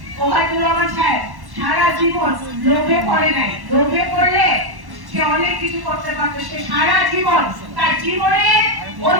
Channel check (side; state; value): left; late; 1.1 ms